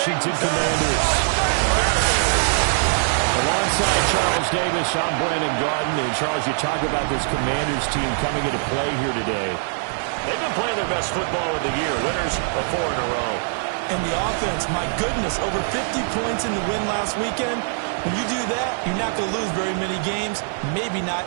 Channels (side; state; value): left; silent; digital silence